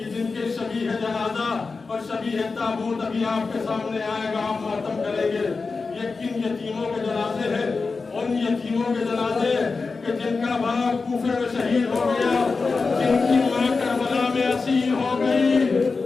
جن کے شبیہ جنازہ اور شبیہ تابوت ابھی آپ کے سامنے آئے گا, آپ ماتم کریں گے. یہ کن یتیموں کے جنازے ہیں؟ ان یتیموں کے جنازے کہ جن کا باپ کوفے میں شہید ہو گیا, جن کی ماں کربلا میں اسیر ہو گئی.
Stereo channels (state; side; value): quieter; right; 4.3 dB